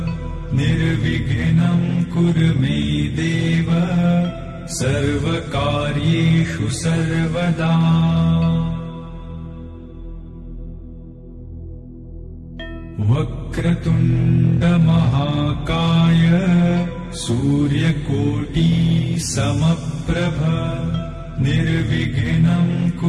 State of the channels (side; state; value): both; identical; correlation 1.00